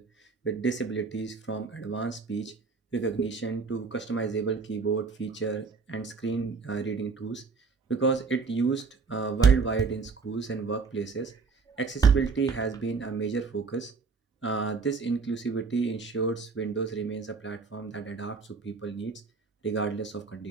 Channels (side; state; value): left; quieter; 4.7 dB